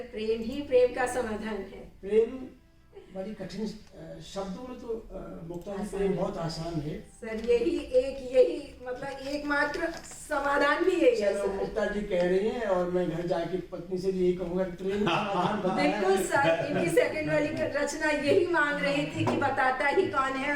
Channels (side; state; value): both; identical; correlation 1.00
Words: प्रेम ही प्रेम का समाधान है। प्रेम बड़ी कठिन शब्दों में तो मुक्ता जी प्रेम बहुत आसान है सर। यही मतलब एकमात्र समाधान भी यही है चलो सर। मुक्ता जी कह रही हैं और मैं घर जाके पत्नी से भी यही कहूंगा कि प्रेम का समाधान बताया बिल्कुल है। सर। इनकी सेकंड वाली रचना यही मांग रही थी कि बताता ही कौन है